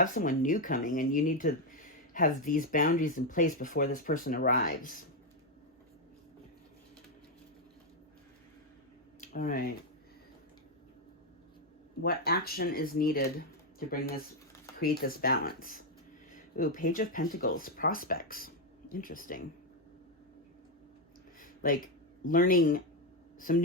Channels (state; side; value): normal; both; correlation 0.05